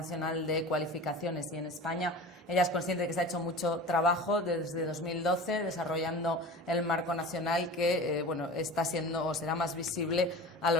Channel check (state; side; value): normal; both; correlation 0.35